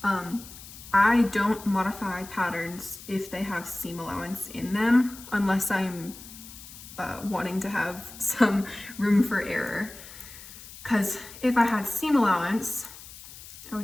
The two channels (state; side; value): noise; left; hiss, 16 dB below the sound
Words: I don't modify patterns if they have seam allowance in them, unless I'm wanting to have some room for error. Because if I had seam allowance, I